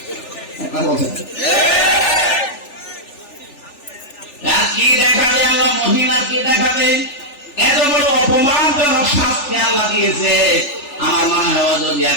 কি দেখাবে আল্লাহ মহিলার, কি দেখাবে? এত বড় অপমানজনক শাস্তি আল্লাহ দিয়েছে। আমার মনে হয় যদি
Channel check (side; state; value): right; late; 3.4 ms